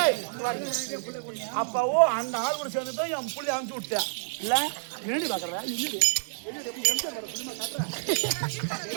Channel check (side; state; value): left; silent; 59 dB below the other